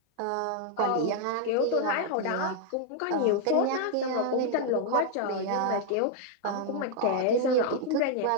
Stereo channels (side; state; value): both; different; correlation 0.00